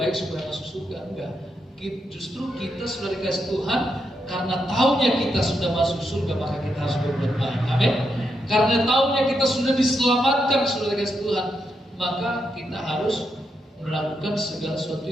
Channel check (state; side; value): normal; both; correlation 0.82